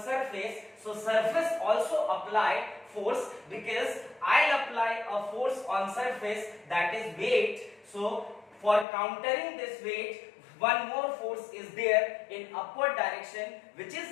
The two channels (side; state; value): right; drops out; at 8.8 s